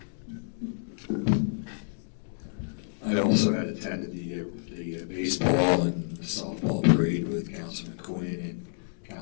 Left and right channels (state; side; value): silent; right; digital silence